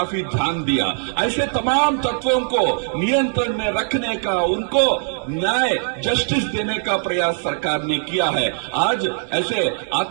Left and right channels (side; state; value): left; silent; digital silence